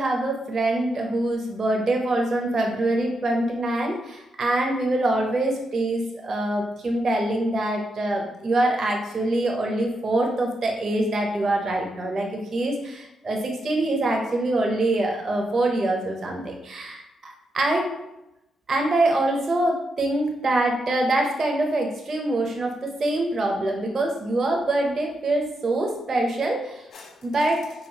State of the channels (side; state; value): both; normal; correlation 0.84